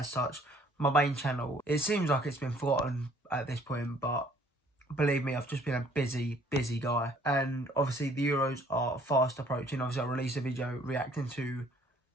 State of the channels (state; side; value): normal; both; correlation 0.59